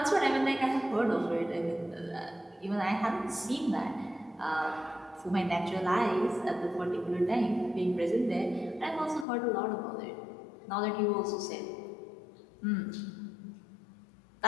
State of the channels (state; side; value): drops out; right; at 9.2 s